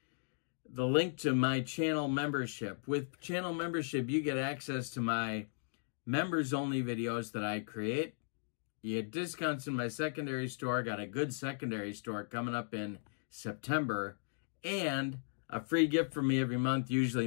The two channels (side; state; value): right; silent; digital silence